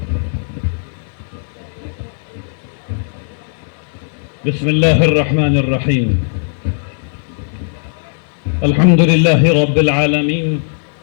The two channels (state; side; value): silent; right; digital silence